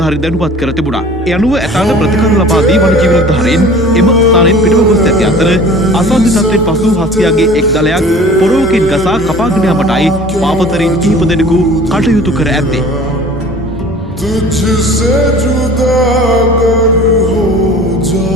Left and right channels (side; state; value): both; normal; correlation 0.45